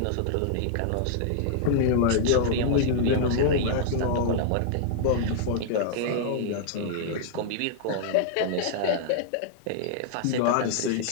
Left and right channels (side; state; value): both; different; correlation -0.01